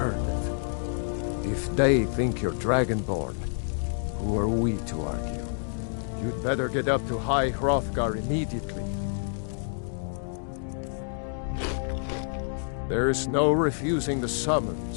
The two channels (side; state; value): right; silent; digital silence